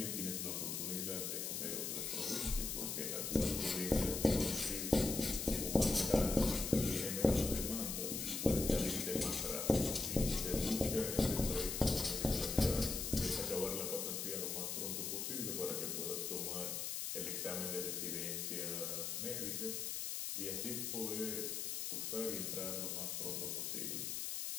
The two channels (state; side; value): noise; left; hiss, 2 dB below the sound